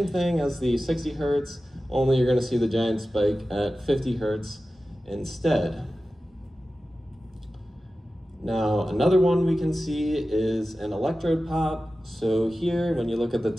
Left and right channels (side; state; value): both; normal; correlation 0.94